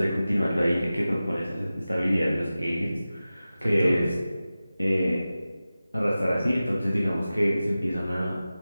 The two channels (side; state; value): both; inverted; correlation -0.95